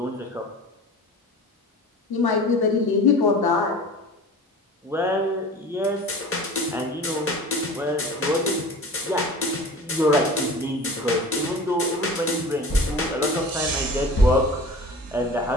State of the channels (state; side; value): normal; both; correlation 0.38